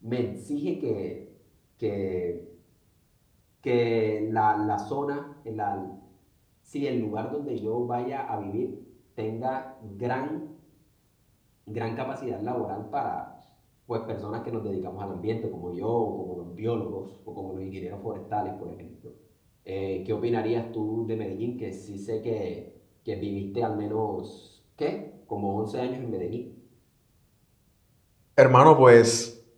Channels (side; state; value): both; identical; correlation 1.00